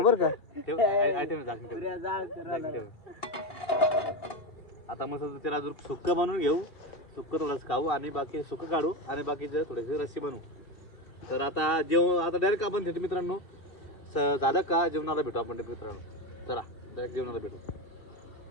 का. आता मस्त त्याला सुक्क बनवून घेऊ. सुक्क थोडंसं खाऊ आणि बाकी सुक्क काढू आणि बाकीचे थोडेसे रस्सी बनवू. तर आता आता डायरेक्ट आपण भेटू मित्रांनो. झालं का जेवणाला भेटू आपण मित्रांनो. चला डायरेक्ट जेवणाला भेटू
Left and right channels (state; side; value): late; right; 2.7 ms